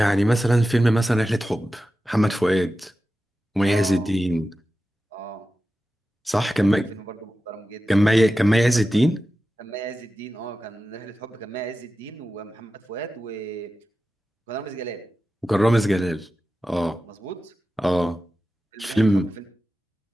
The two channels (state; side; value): normal; both; correlation 0.93